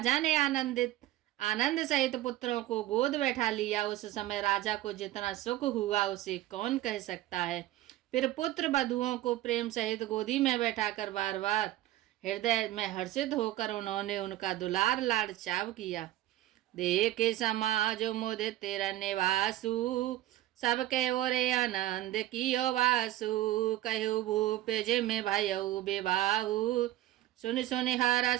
ने आनंद सहित पुत्रों को गोद बैठा लिया। उस समय राजा को जितना सुख हुआ उसे कौन कह सकता है। फिर पुत्र बधुओं को प्रेम सहित गोदी में बैठाकर बार बार हृदय में हर्षित होकर उन्होंने उनका दुलार लाड चाव किया। देखे समाज मुदित तेरा निवासु, सबके ओरे आनंद कियो वासु। कहु भूप जिम भयउ विवाहु, सुन सुन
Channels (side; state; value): left; quieter; 14.9 dB